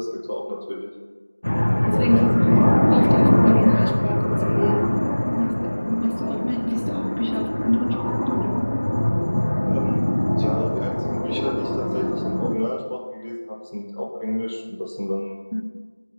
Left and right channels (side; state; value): both; inverted; correlation -1.00